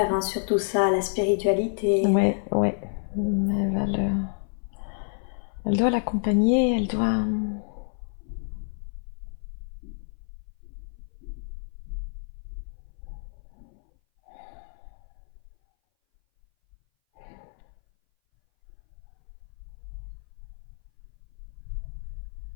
sur tout ça, la spiritualité. Ouais. Elle doit l'accompagner, elle doit...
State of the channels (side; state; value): right; silent; 57 dB below the other